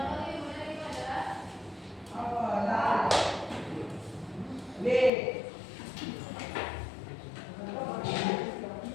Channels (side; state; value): right; drops out; at 5.1 s